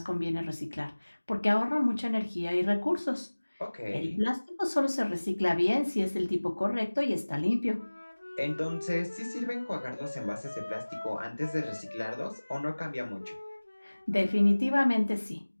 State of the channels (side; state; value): both; inverted; correlation -1.00